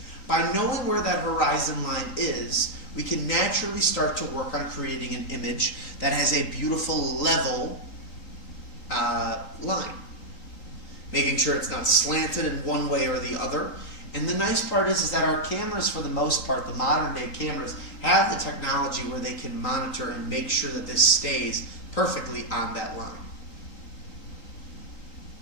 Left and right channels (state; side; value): late; right; 3.9 ms